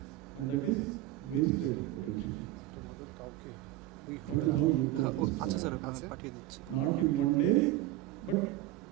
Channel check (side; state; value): left; quieter; 15.1 dB